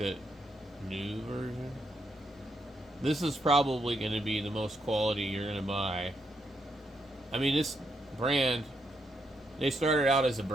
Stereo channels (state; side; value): normal; both; correlation 0.79